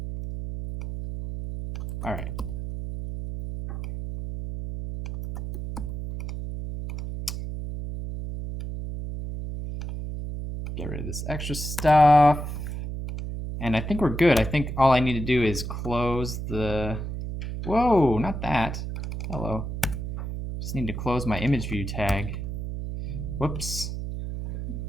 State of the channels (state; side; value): noise; right; hum, 5 dB below the sound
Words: All right. Get rid of this extra stuff. And I think we're good. I think all I need to do is close the... Whoa, not that. Hello. Just need to close my image view tag. Whoops.